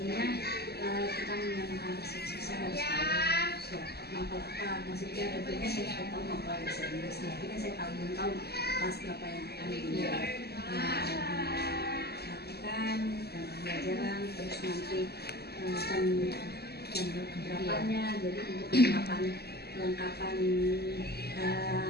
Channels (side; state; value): right; late; 0.46 ms